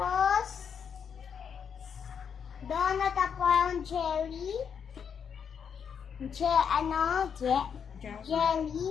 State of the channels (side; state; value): right; quieter; 7.2 dB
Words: donut at parang jelly. Jelly.